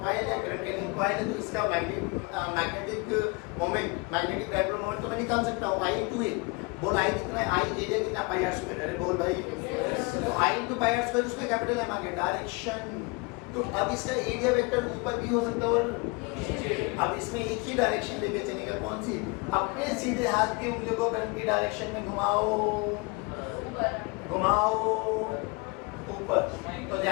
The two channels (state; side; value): quieter; right; 28.4 dB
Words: कॉइल है, करंट कैरिंग कॉइल है, तो इसका magnetic moment, magnetic dipole moment तो मैं निकाल सकता हूँ I into A। बोल I कितना है, I एरिया कितना, पाई आर स्क्वायर। अरे बोल भाई, तो I into pi r square, उसका कैपिटल M आ गया, डायरेक्शन। तो अब इसका एरिया वेक्टर ऊपर भी हो सकता है और अब इसमें एक ही डायरेक्शन लेके चलेगा, कौन सी, अपने सीधे हाथ की उंगलियों को करंट की डायरेक्शन में घुमाओ, घुमाओ ऊपर। तो